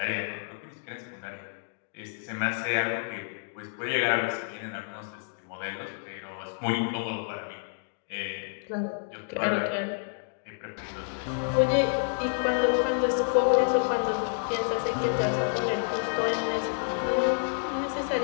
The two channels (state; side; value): silent; right; digital silence